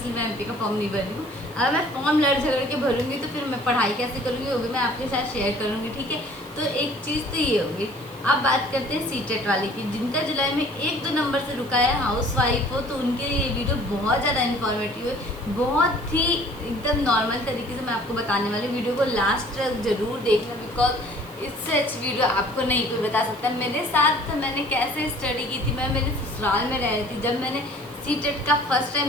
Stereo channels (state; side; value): noise; right; hiss, 22 dB below the sound